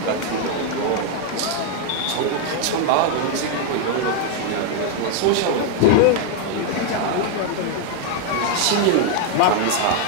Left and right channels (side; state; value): both; different; correlation 0.01